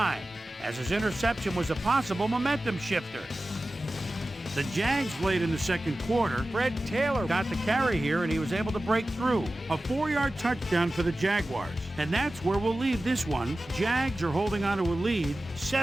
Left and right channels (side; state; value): both; normal; correlation 0.95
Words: as his interception was a possible momentum shifter. The Jags, late in the second quarter, Fred Taylor got the carry here and he was able to break through. A 4-yard touchdown for the Jaguars. And that's where we'll leave this one. Jags are holding on to a lead,